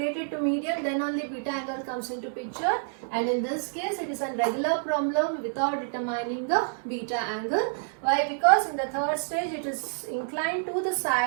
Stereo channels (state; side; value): silent; left; 59 dB below the other